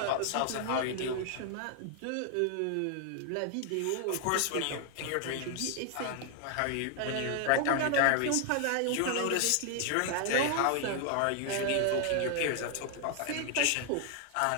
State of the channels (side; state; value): both; different; correlation 0.00